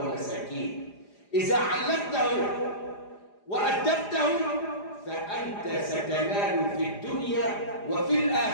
إذا علمته وأدبته فأنت ستنال في الدنيا وفي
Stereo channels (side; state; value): right; late; 4.9 ms